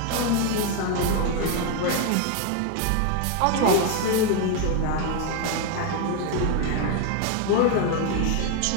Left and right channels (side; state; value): both; different; correlation 0.01